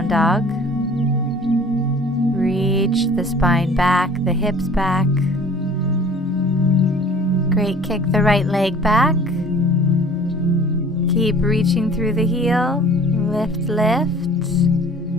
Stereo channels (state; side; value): normal; both; correlation 0.49